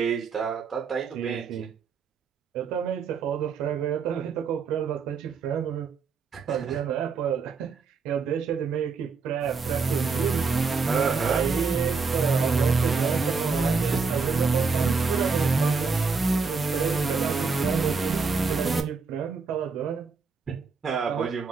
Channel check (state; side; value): quieter; left; 4.9 dB